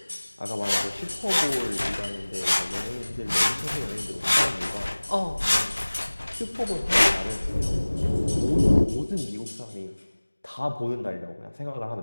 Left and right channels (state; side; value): inverted; both; correlation -1.00